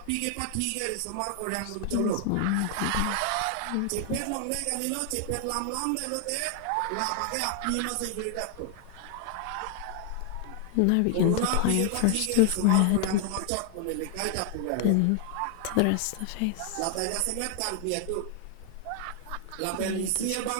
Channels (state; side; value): different; both; correlation 0.00